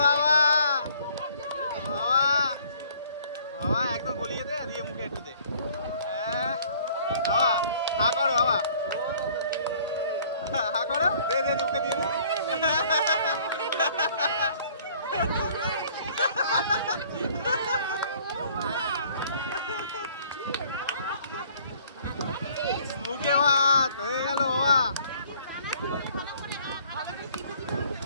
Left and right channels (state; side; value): inverted; both; correlation -0.57